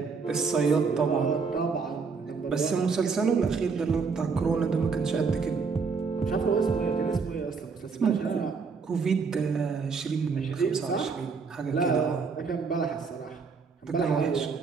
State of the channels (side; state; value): left; quieter; 5.1 dB